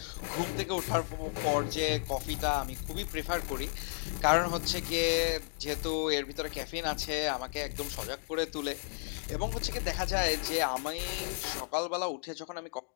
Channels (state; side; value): silent; right; 55 dB below the other